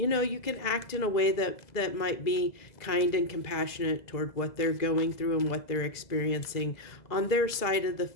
can act in a way that might be kind and compassionate toward what they're going through and what they're experiencing on their side of the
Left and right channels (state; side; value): late; right; 2.0 ms